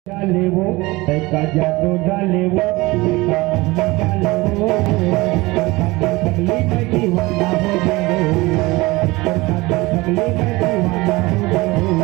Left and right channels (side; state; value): left; quieter; 21.7 dB